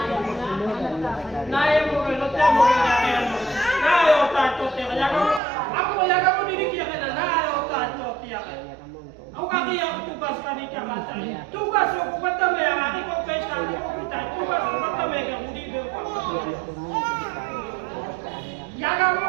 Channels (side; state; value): left; drops out; at 5.4 s